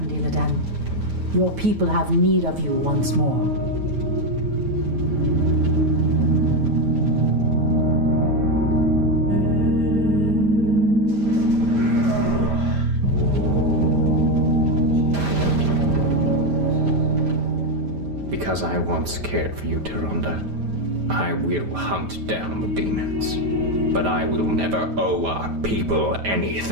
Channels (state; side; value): late; left; 9.3 ms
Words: Illidan. Your people have need of you once more. Because I once cared for you, Tyrande, I will hunt down the demons. But I will never owe our people